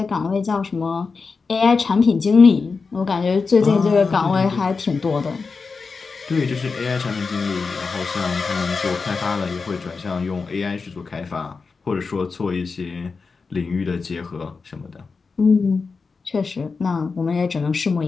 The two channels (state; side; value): quieter; right; 4.6 dB